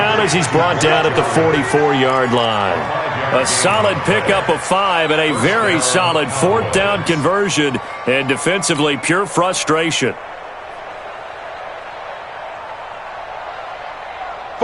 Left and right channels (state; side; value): identical; both; correlation 1.00